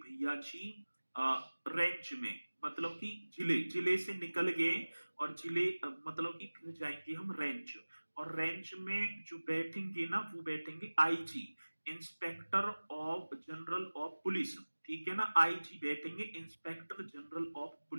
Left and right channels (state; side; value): inverted; both; correlation -1.00